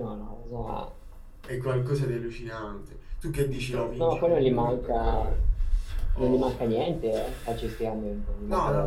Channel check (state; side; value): identical; both; correlation 1.00